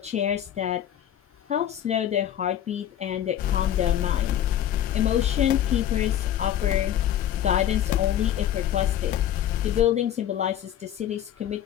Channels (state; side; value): quieter; right; 11.0 dB